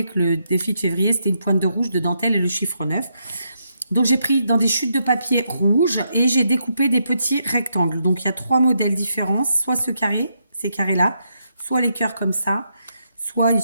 que le défi de février, c'était une pointe de rouge, de dentelle et le chiffre 9. Donc, j'ai pris dans des chutes de papier rouge et j'ai découpé des petits rectangles. Donc, il y a 3 modèles différents. Soit ce carré, ces carrés-là, soit les cœurs comme ça, soit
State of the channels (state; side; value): inverted; both; correlation -0.79